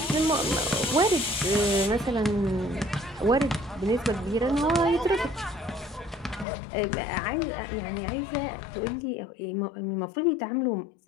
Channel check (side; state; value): right; drops out; at 6.5 s